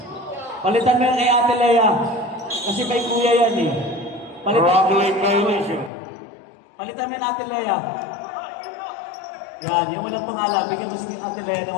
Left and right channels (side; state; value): right; drops out; at 5.9 s